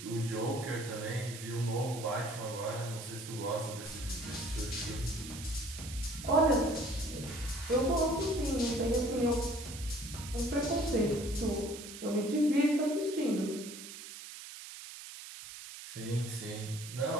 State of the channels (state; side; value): noise; right; hiss, 12 dB below the sound